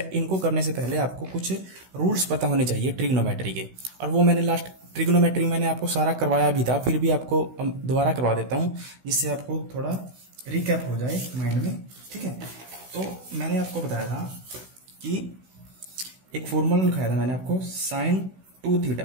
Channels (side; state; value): left; late; 16 ms